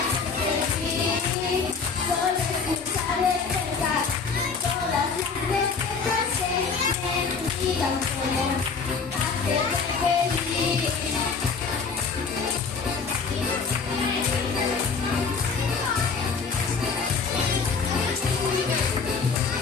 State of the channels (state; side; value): quieter; right; 5.2 dB